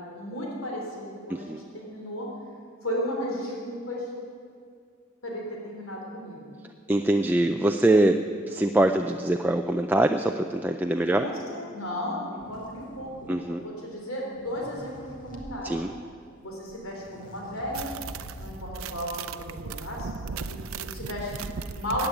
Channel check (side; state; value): both; normal; correlation 0.67